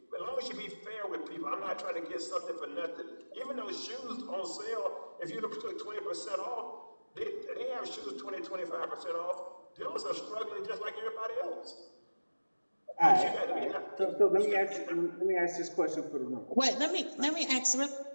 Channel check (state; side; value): inverted; both; correlation -1.00